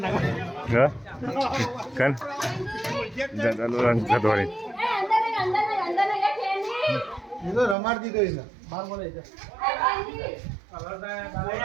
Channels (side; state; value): left; drops out; at 7.8 s